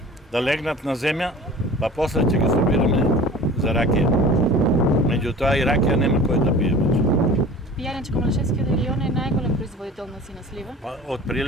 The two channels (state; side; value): normal; both; correlation 0.41